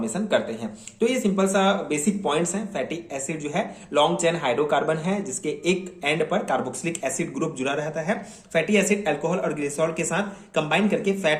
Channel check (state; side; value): identical; both; correlation 1.00